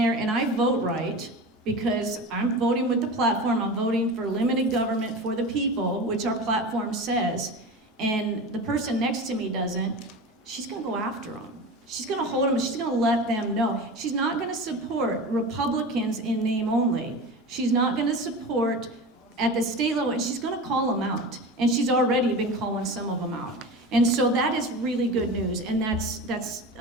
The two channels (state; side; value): normal; both; correlation 0.30